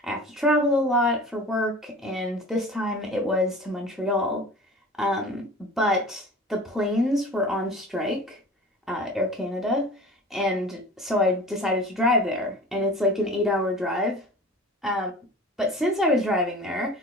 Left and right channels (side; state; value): both; normal; correlation 0.40